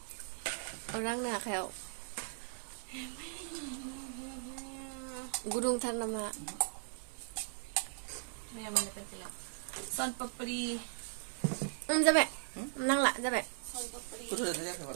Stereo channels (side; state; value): left; silent; 52 dB below the other